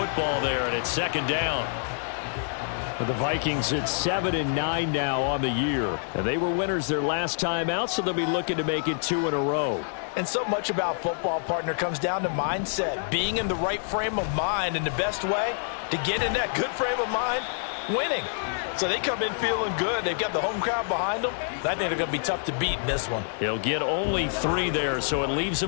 there, and it's second down. For the Vikings, it's 7-9 now on the year. And they were winners their last time out, so they'll be looking to make it 2 in a row. And so much about football, partner, comes down to mindset. Being in the right frame of mind, and the best way to get in that good frame of mind, winning. So they come in feeling good. They've got the home crowd behind them. I think they're going to be tough to beat in this one. He'll get only 3 there, so it leaves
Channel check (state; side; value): silent; right; 60 dB below the other